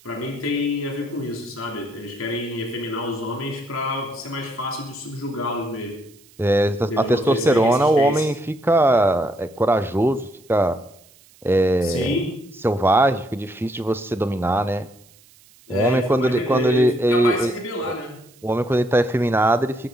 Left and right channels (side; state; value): right; noise; hiss, 28 dB below the sound